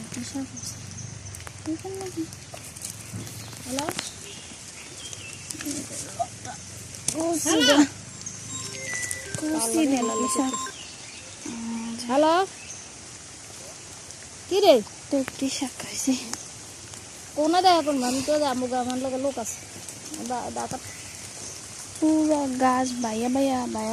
শাক এখানে নাকি হ্যালো হ্যালো কি রে দেখি শাক খাইছি কোনা দেয় এখন আমি তো আমার আমার লোক আছে ডাকা পুরা গাছ বাইয়া বাইয়া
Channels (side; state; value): both; identical; correlation 1.00